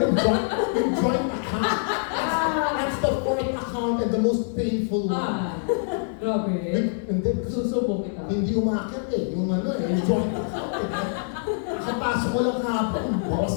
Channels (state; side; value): silent; right; digital silence